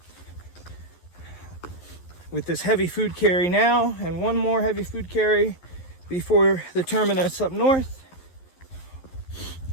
with this heavy food carry now and one more heavy food carry before the terminus up north,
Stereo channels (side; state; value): right; late; 11 ms